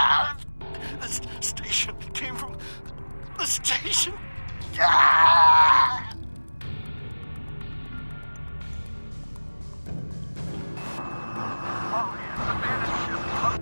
This station came from the station! Ah!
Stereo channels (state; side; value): inverted; both; correlation -1.00